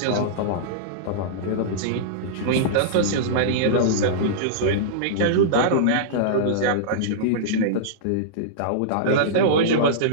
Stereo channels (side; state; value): both; different; correlation -0.03